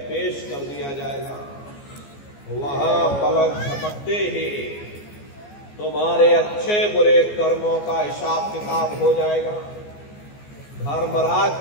पेश कर दिया जाएगा। वहां पलक झपकते ही तुम्हारे अच्छे बुरे कर्मों का हिसाब किताब हो जाएगा। धर्मराज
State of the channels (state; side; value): late; right; 14 ms